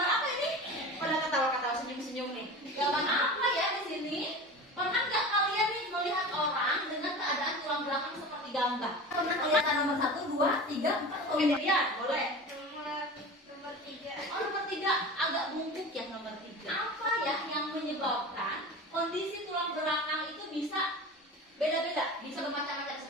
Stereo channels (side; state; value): both; normal; correlation 0.33